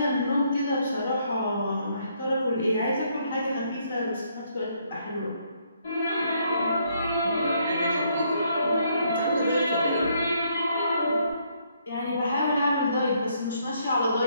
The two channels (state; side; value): inverted; both; correlation -0.71